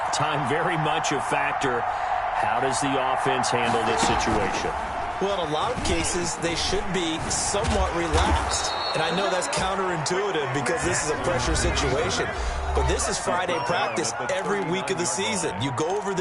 time very much a factor. How does the offense handle this situation? Well, in a lot of cases, they should be somewhat relaxed. And I know that's counterintuitive because this is a pressure situation. But this is Friday practice every week of the season. You go over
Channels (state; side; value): identical; both; correlation 1.00